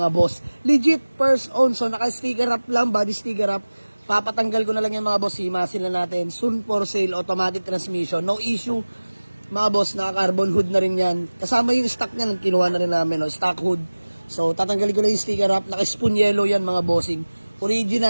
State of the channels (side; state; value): both; inverted; correlation -1.00